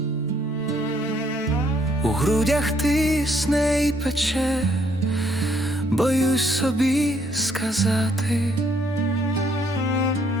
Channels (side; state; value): both; normal; correlation 0.67